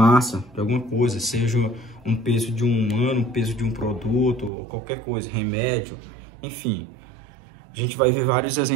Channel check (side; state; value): left; drops out; at 4.5 s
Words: de alguma coisa, seja um peso de um humano, um peso de um produto, ou qualquer coisa, remédio, enfim. A gente vai ver vários